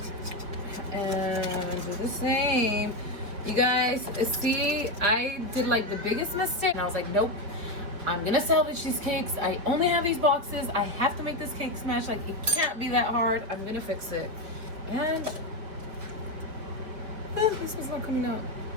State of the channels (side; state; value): left; late; 4.7 ms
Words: And do the same. You guys, see, I did like the biggest mistake. And I was like, nope. I'm gonna salvage these cakes. I only have these boxes. I have to make this cake smash. Like, it can't be that hard. I'm gonna fix it. And this was not coming out.